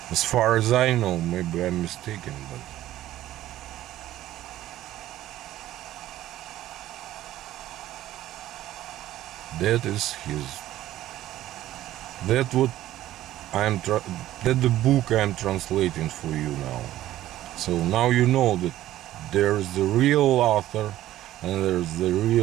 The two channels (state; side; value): quieter; left; 14.0 dB